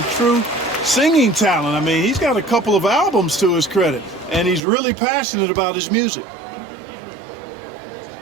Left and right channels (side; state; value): left; drops out; at 4.6 s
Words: true singing talent. I mean, he's got a couple of albums to his credit, and he's really passionate about his music.